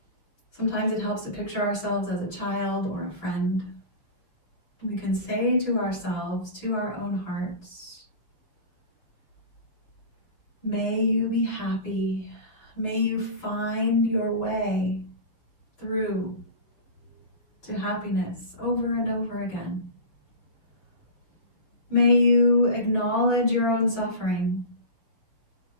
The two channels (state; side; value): late; right; 6.3 ms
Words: Sometimes it helps to picture ourselves as a child or a friend. We can say to ourselves, to our own hearts, may you be happy. May you find your way through to happiness over and over again. May you acknowledge your own suffering